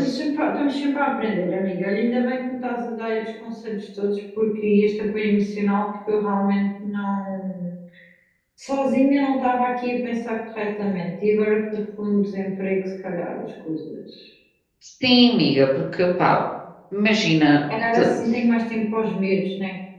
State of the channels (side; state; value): both; identical; correlation 1.00